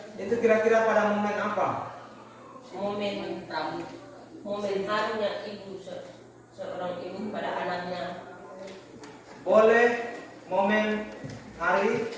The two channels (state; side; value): identical; both; correlation 1.00